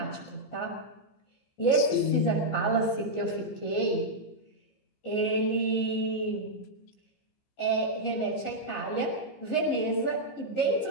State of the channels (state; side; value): late; right; 15 ms